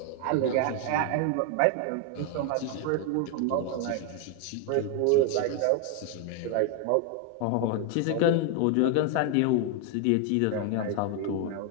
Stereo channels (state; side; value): different; both; correlation 0.00